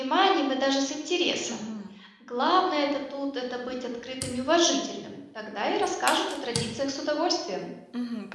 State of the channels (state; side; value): identical; both; correlation 1.00